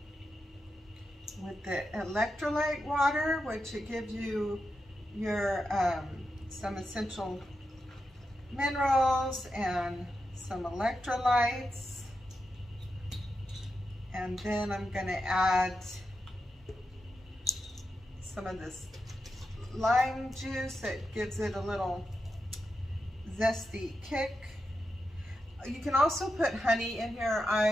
with the electrolyte water, which it gives you your some essential minerals and some electrolytes. And then I'm gonna add some of this lime juice that gives it a little zesty kick. You can also put honey in here.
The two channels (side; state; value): both; normal; correlation 0.88